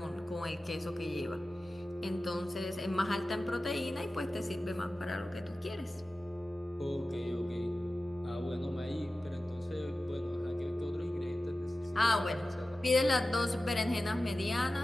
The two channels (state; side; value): normal; both; correlation 0.95